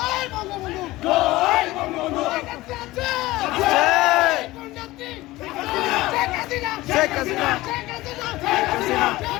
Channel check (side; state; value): right; quieter; 18.5 dB